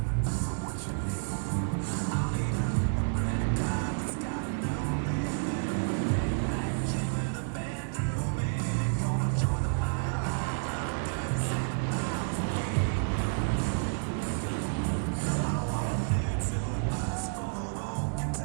So what you need? I'll need a credit card that's got no limit, and a big black gym with a bedroom in it. Gonna join the wildlife club, doing 7,000 feet. I want a new tour bus full of old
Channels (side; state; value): left; silent; digital silence